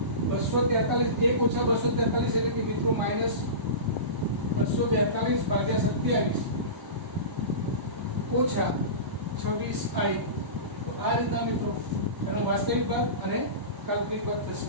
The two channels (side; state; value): left; late; 1.0 ms